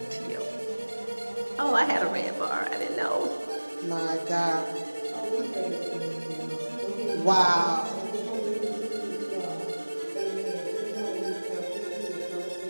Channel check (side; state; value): both; inverted; correlation -1.00